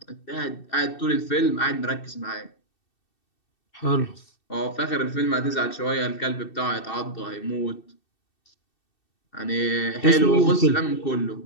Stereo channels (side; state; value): right; late; 2.7 ms